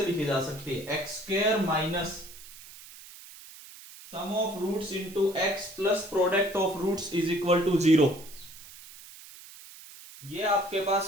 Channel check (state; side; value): noise; right; hiss, 18 dB below the sound